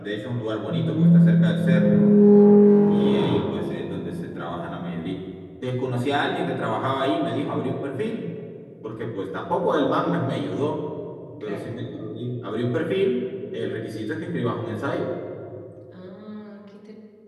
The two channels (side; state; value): both; identical; correlation 1.00